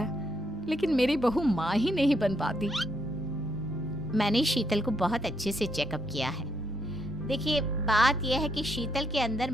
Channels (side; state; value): both; normal; correlation 0.75